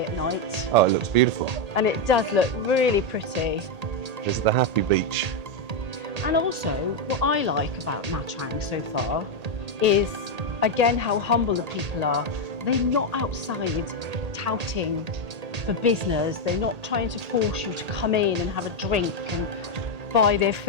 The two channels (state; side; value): late; left; 1.8 ms